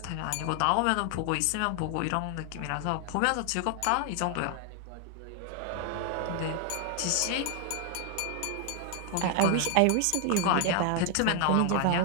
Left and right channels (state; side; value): different; both; correlation 0.00